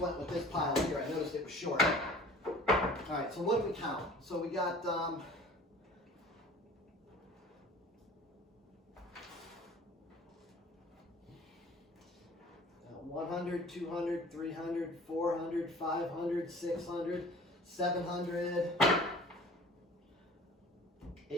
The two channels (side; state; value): both; normal; correlation 0.46